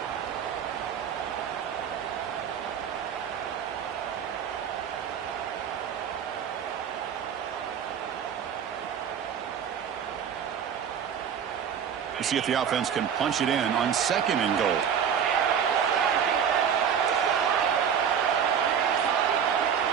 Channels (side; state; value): left; quieter; 8.0 dB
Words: We'll see if the offense can punch it in on 2nd and goal.